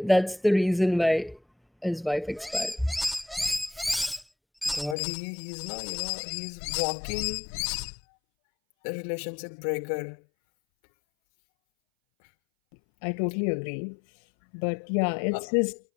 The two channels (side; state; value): right; drops out; at 5.0 s